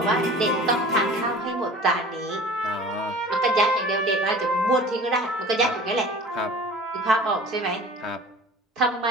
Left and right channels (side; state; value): both; normal; correlation 0.42